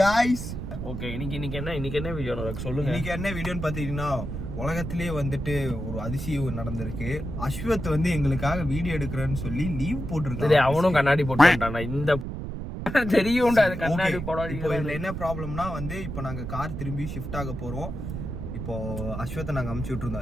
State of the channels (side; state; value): right; noise; rumble, 6 dB below the sound